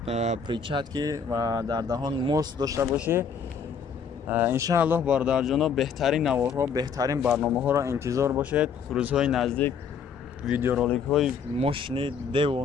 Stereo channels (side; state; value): right; quieter; 6.3 dB